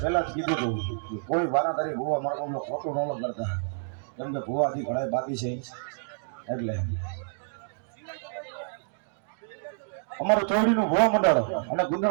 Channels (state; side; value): silent; left; digital silence